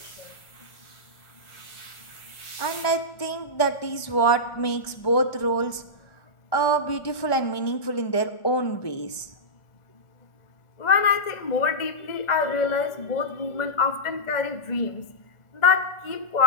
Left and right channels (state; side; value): late; right; 1.4 ms